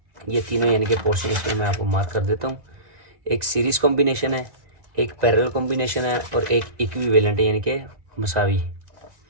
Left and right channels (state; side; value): late; left; 2.0 ms